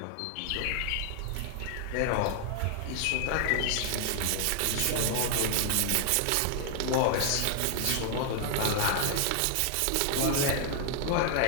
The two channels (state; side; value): different; both; correlation 0.00